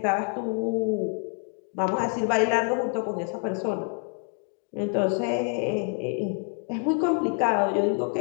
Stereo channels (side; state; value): right; quieter; 39.8 dB